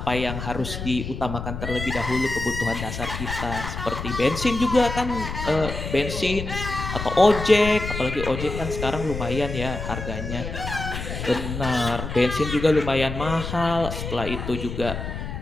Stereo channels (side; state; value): left; noise; rumble, 6 dB below the sound